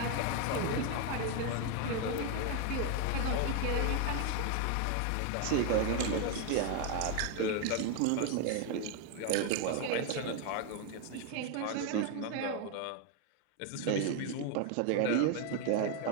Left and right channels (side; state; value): both; different; correlation 0.01